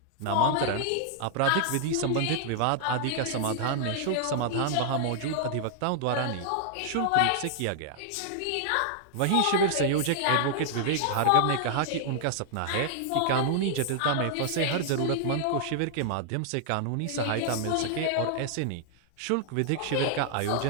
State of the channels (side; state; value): both; different; correlation -0.01